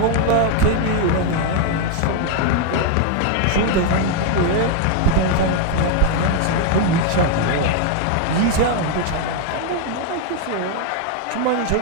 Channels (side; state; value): both; different; correlation 0.00